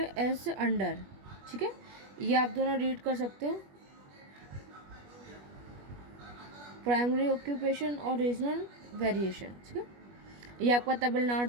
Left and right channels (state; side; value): late; left; 21 ms